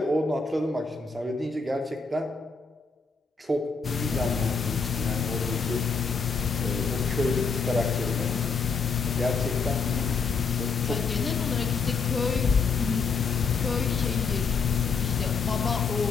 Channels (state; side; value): quieter; right; 4.9 dB